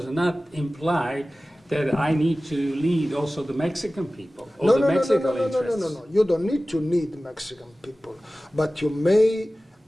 not imply that I need to lead also the Mexican people or the Mexican interests. No. You don't need to lead Mexican people, but you may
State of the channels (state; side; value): normal; both; correlation 0.96